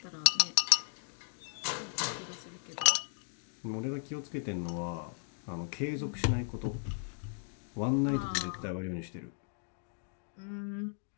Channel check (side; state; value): right; silent; digital silence